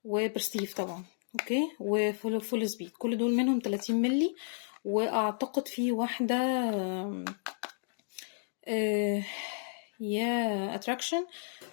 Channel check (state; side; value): silent; right; digital silence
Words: وبرستيف طبعا. اوكي. وفول سبيد، كل دول منهم 30 ملي. واعتقد في واحدة يا اتراكشن